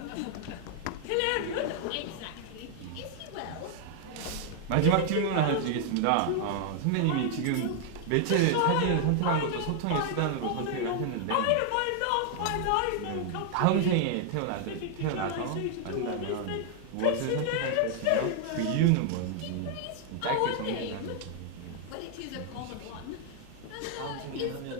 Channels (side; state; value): both; different; correlation 0.00